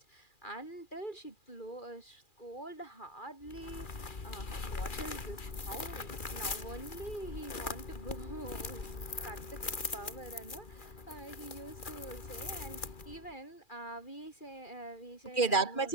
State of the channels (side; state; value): right; late; 2.4 ms